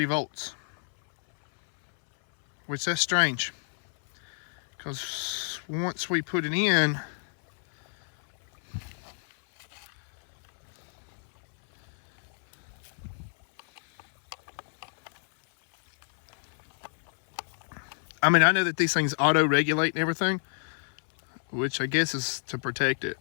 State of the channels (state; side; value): silent; right; 59 dB below the other